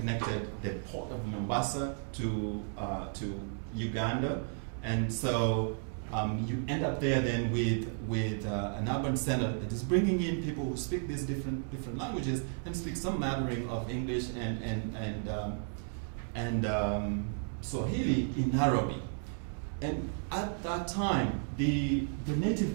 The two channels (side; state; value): left; silent; 55 dB below the other